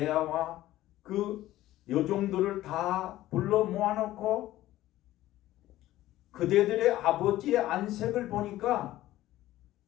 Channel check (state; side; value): quieter; right; 15.1 dB